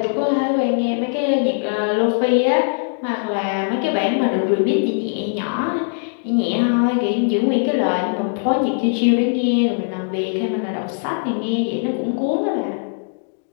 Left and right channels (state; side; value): silent; right; digital silence